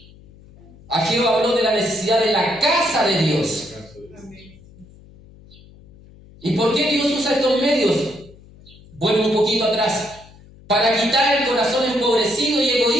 Ageo habló de la necesidad de la casa de Dios. ¿Y por qué Dios usa estos medios? Vuelvo un poquito atrás. Para quitar el corazón empobrecido y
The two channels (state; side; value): noise; left; hum, 23 dB below the sound